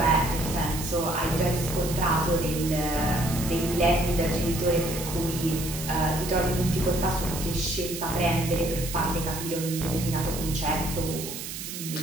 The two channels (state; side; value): noise; right; hiss, 8 dB below the sound